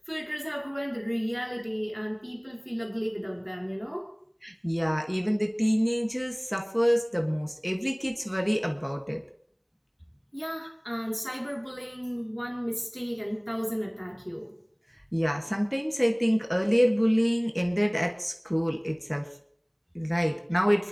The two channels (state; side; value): identical; both; correlation 1.00